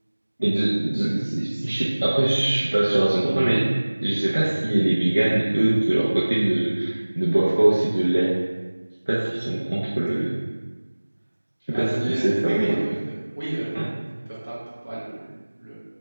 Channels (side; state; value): both; inverted; correlation -1.00